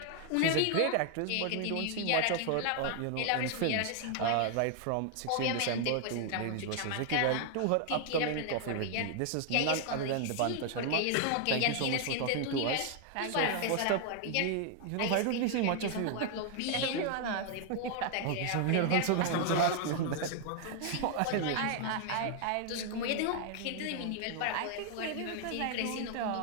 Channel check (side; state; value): both; different; correlation 0.00